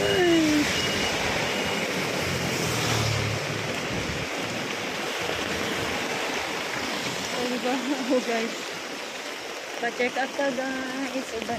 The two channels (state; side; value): identical; both; correlation 1.00